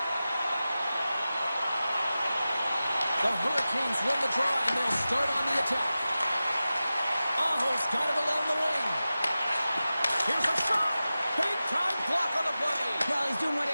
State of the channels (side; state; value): both; inverted; correlation -0.95